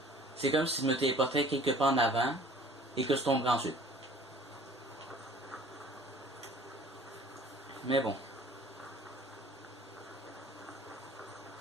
c'est comme si je me téléportais quelque part en avant et que je tomberais ensuite. Mais bon.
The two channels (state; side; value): normal; both; correlation 0.50